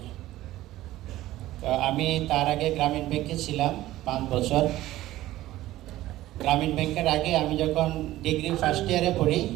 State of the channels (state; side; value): quieter; left; 15.6 dB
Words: তো আমি তার আগে গ্রামীণ ব্যাংকে ছিলাম 5 বছর। গ্রামীণ ব্যাংকের আগে আমি যখন ডিগ্রি ফার্স্ট ইয়ারে পড়ি,